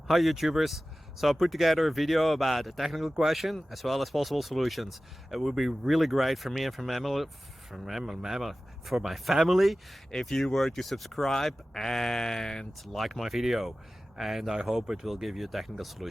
Hi YouTubers! So I put together a video about a technical question as well as possible solutions. It would be really great for me and for my family if you were to subscribe and like my video, and I hope it will give you a technical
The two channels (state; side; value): normal; both; correlation 0.96